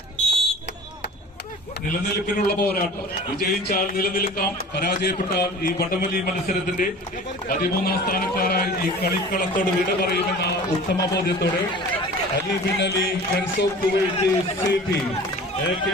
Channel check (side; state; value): both; normal; correlation 0.41